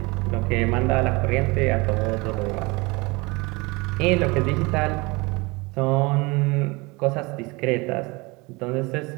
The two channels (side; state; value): left; quieter; 25.3 dB